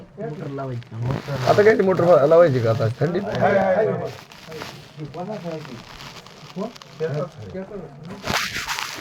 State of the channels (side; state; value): both; identical; correlation 1.00